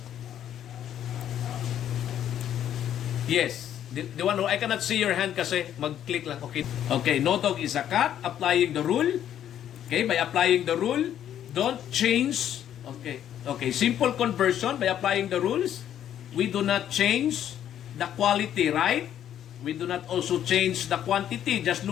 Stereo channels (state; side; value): quieter; right; 10.5 dB